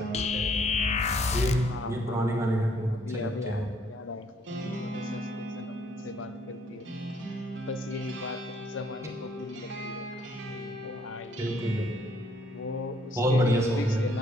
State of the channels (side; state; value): both; normal; correlation 0.65